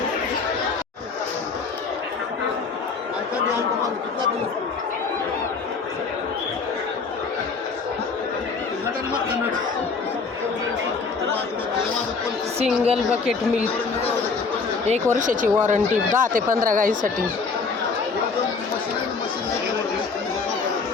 सिंगल बकेट मिल्क 1 वर्षाची वॉरंटी 10 ते 15 गाईसाठी.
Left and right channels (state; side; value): quieter; right; 4.8 dB